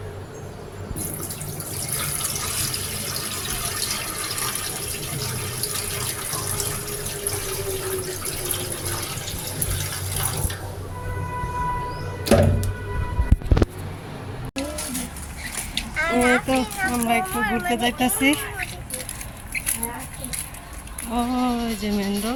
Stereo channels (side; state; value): both; identical; correlation 1.00